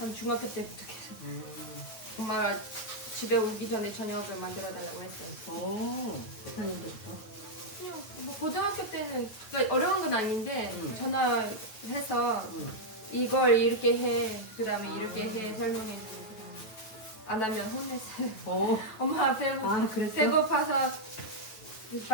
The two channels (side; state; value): right; late; 9.3 ms